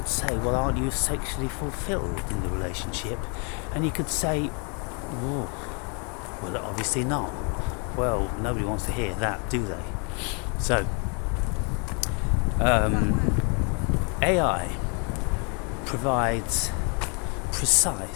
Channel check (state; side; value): quieter; right; 36.1 dB